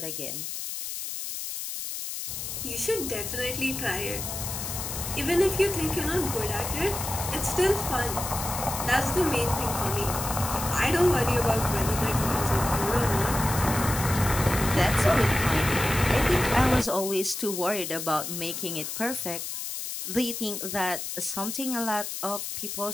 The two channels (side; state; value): left; noise; hiss, 6 dB below the sound